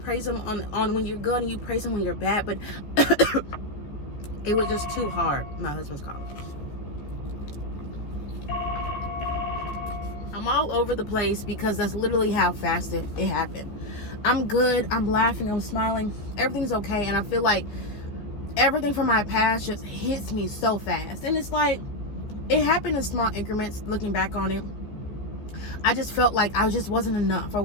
him on when you're good and you praise him when you're bad, but it was just too hard. My husband's calling. I'm all over the place because that's literally how fast it happened. I'm good. I'm laughing. I'm smiling. Everything's okay. And I feel like everything from my past just hits me so fast. And it's like, it happened in small increments. Looking back on it, I just felt like I just wasn't enough, or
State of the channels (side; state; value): right; late; 14 ms